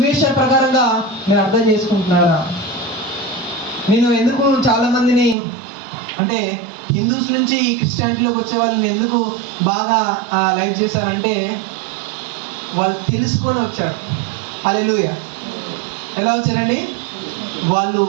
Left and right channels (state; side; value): drops out; left; at 5.4 s